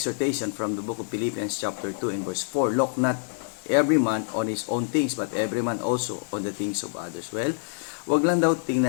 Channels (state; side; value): silent; right; digital silence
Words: from the book of Philippians chapter 2 and verse 4. Look not every man on his own things, but every man also on the things of others. Well, wag lang daw